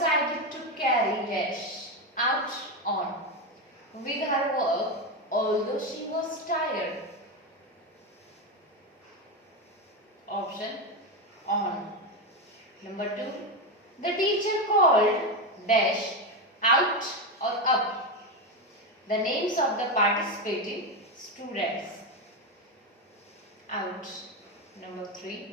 to carry dash out on with her work although she was tired. Option on. Number 2, the teacher called dash out or up the names of the participating students. Out. Number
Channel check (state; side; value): normal; both; correlation 0.12